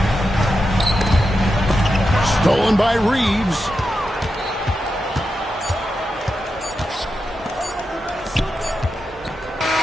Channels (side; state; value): both; normal; correlation 0.88